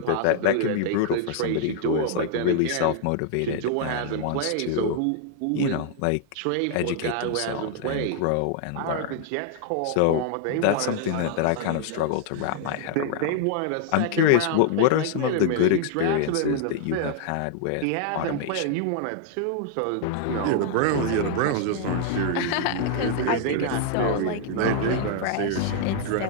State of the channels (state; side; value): different; both; correlation 0.00